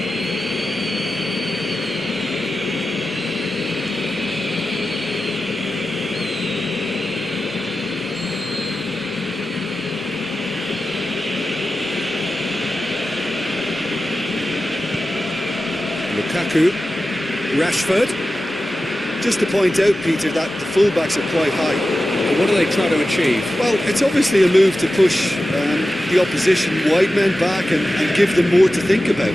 Lukaku, Rashford. Just to point out, Peter, that the fullbacks are quite high. And what are they trying to achieve? Well, it's obviously a move to push the opposition wide men back and give them more to think about.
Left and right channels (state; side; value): normal; both; correlation 0.93